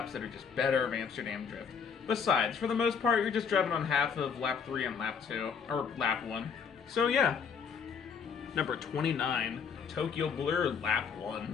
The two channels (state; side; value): quieter; right; 6.4 dB